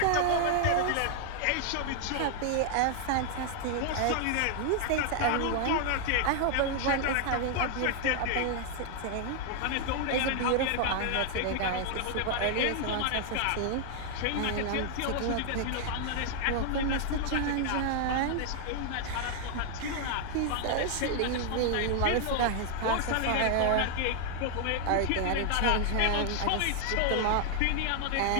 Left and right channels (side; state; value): both; different; correlation 0.00